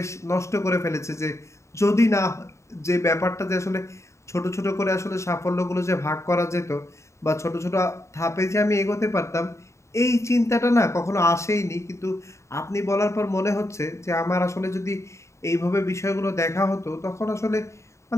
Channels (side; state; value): right; late; 0.14 ms